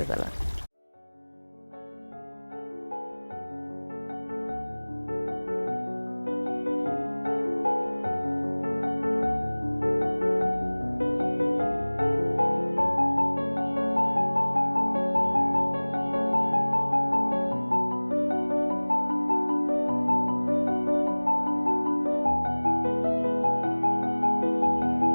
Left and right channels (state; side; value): inverted; both; correlation -1.00